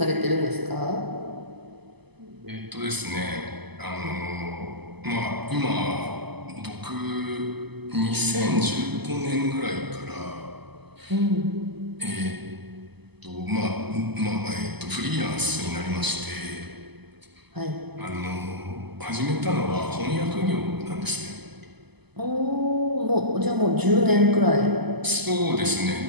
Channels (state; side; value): late; left; 0.99 ms